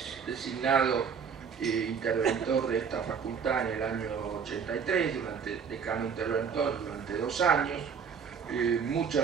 designado interventor de esta facultad en el año 83, decano interventor durante 2 años.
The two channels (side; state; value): left; quieter; 6.6 dB